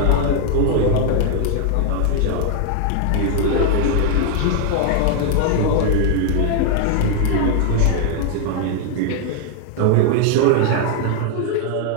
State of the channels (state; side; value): different; both; correlation 0.00